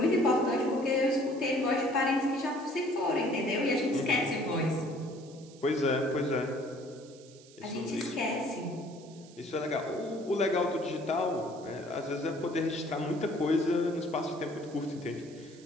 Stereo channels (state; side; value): noise; right; hiss, 23 dB below the sound